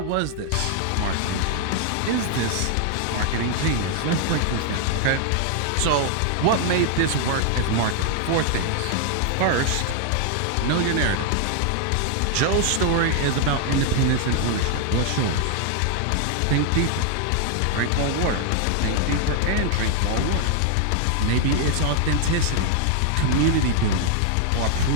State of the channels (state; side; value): different; both; correlation 0.00